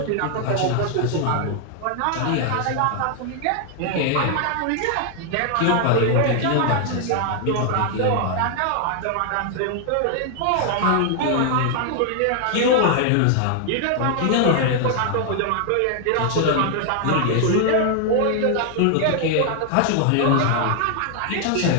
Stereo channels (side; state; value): both; different; correlation 0.00